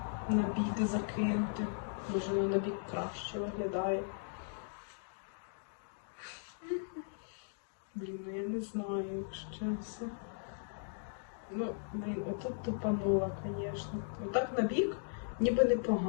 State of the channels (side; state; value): right; silent; digital silence